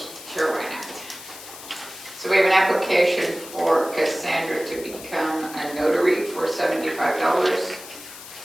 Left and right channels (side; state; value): left; noise; hiss, 15 dB below the sound